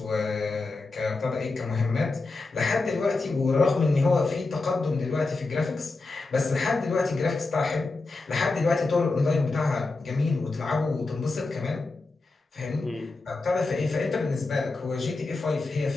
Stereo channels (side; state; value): right; quieter; 3.5 dB